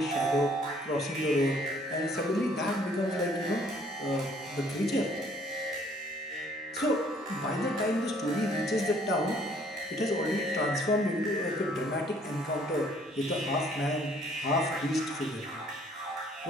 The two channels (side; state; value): both; normal; correlation 0.60